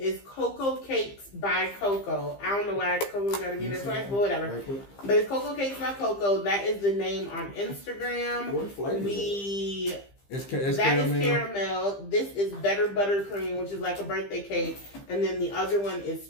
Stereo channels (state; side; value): late; right; 15 ms